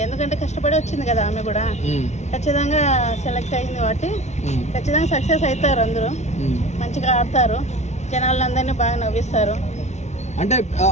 ఎందుకంటే కష్టపడి వచ్చింది కదా ఆమె కూడా. ఖచ్చితంగా సెలెక్ట్ అయింది కాబట్టి ఖచ్చితంగా సక్సెస్ అవుతారు. అందరూ మంచిగా ఆడతారు, జనాలందరినీ బాగా నవ్విస్తారు.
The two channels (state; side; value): late; right; 0.33 ms